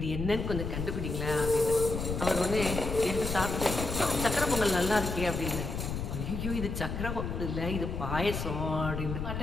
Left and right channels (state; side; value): noise; left; rumble, 4 dB below the sound